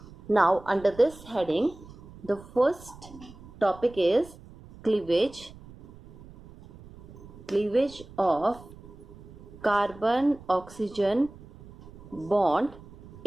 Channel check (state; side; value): noise; right; rumble, 19 dB below the sound